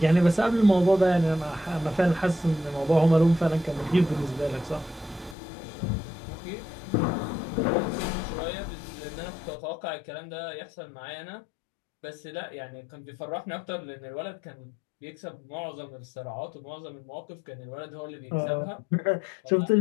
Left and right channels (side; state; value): right; drops out; at 5.4 s